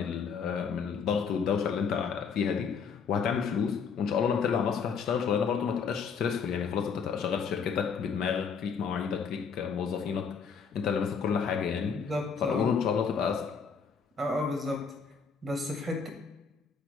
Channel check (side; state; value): right; quieter; 6.0 dB